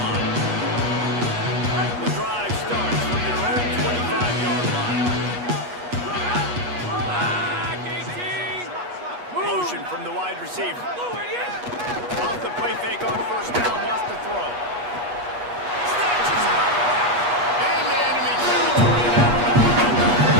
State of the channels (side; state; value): left; late; 8.3 ms